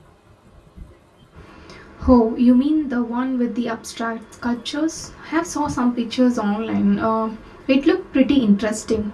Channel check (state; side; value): identical; both; correlation 1.00